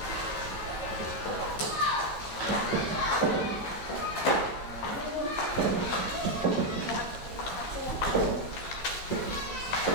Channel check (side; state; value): right; late; 14 ms